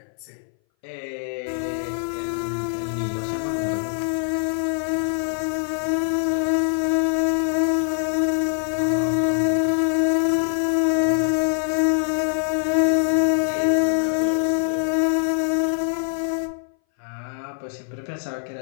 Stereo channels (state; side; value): silent; right; 60 dB below the other